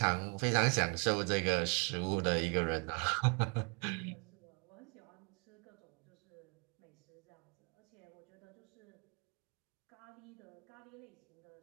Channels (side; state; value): left; quieter; 34.0 dB